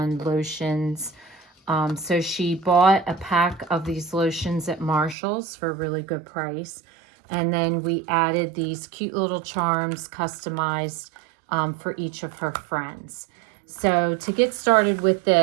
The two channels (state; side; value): drops out; left; at 5.2 s